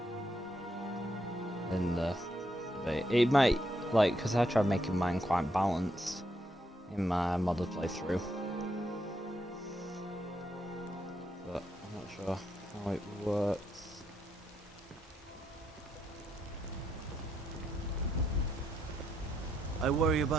In the debate. It might, like, because I tried making mine quite balanced in my modded playthrough. But I'm not sure how it works. I worry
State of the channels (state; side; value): normal; both; correlation 0.78